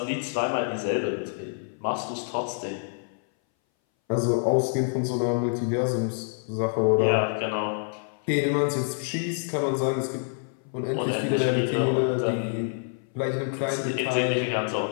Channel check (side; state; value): right; silent; 59 dB below the other